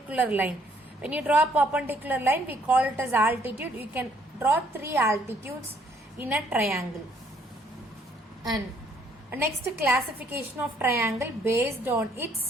line. When you draw a perpendicular line, we call it as altitude. You can draw 3 altitudes in a triangle. And next, classification of triangle based on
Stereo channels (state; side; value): normal; both; correlation 0.66